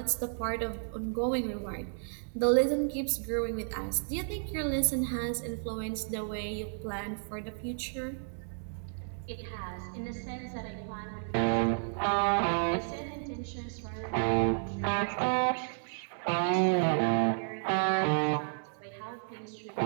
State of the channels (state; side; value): silent; left; digital silence